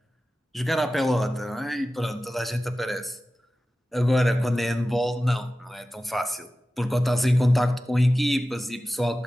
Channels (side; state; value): both; normal; correlation 0.95